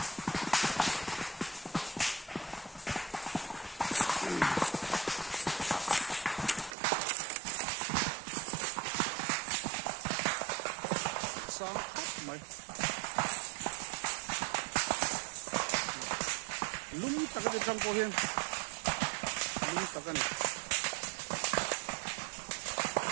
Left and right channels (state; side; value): drops out; left; at 6.8 s